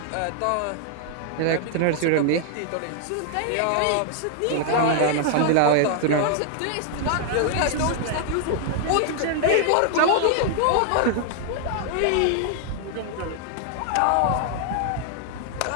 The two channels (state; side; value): different; both; correlation 0.00